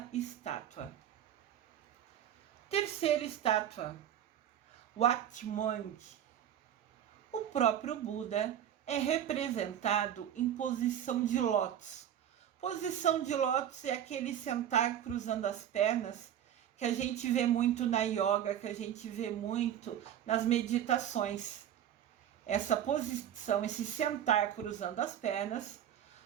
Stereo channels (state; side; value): quieter; left; 10.3 dB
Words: estátua. Terceira estátua, Wat Mwang. O próprio Buda é representado em posição de lótus. Posição de lótus é aquele sentar cruzando as pernas que a gente vê muito na yoga, que a gente vê muito nas meditações. Essa posição, esse sentar cruzando as pernas,